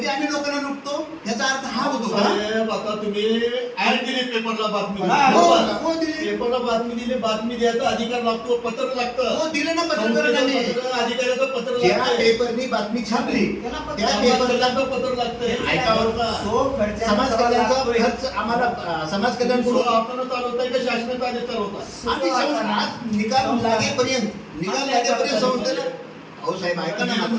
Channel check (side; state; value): both; identical; correlation 1.00